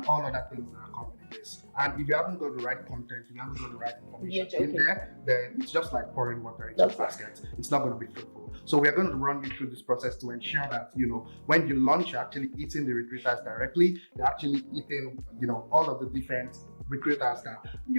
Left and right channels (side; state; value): both; inverted; correlation -1.00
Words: all other things that are coming in this. And if you haven't got the right content, if you haven't got the right information in there, then it's just like pouring water into a basket. It's not going to be fruitful. So we are going to run you through this process to ensure that, when you launch, you're actually eating the recruiters directly. You're actually eating, all of the different recruiters that,